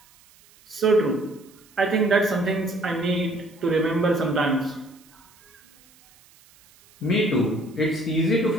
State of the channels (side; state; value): right; noise; hiss, 28 dB below the sound